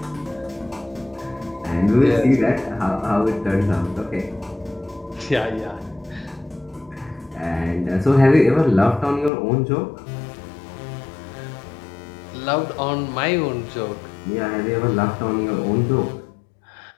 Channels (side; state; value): right; drops out; at 9.3 s